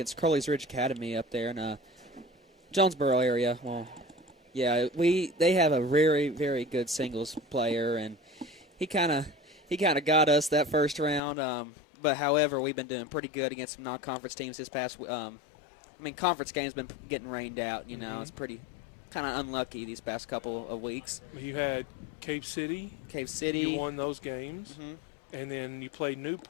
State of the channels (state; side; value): drops out; right; at 11.2 s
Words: Crowley's Ridge Academy up there in Jonesboro area. Well, yeah, they have a very, very good singles player, and he kind of got us that first round. But however, we've been doing pretty good against some non-conference teams this past. Conference games been getting rained out. You know, Mm-hmm. It's pretty kind of unlucky these past couple of weeks. You had Cave City. You won those games. Mm-hmm. And then you played